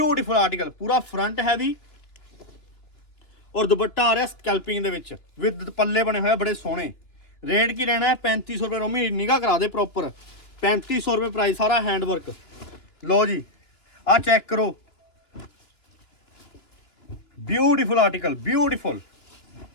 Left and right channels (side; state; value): right; late; 3.0 ms